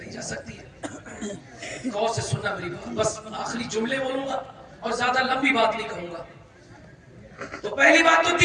جا سکتی ہے. غور سے سننا میری بات, بس آخری جملے بولوں گا اور زیادہ لمبی بات نہیں کہوں گا. تو پہلی بات تو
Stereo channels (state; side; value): identical; both; correlation 1.00